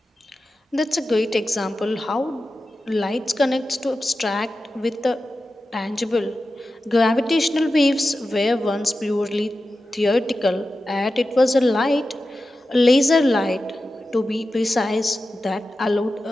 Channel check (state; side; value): normal; both; correlation 0.93